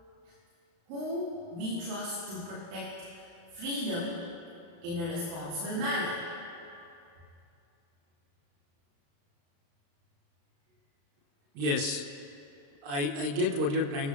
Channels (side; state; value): left; late; 35 ms